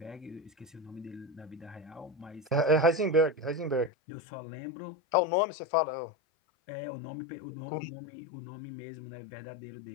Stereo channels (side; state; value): right; drops out; at 3.9 s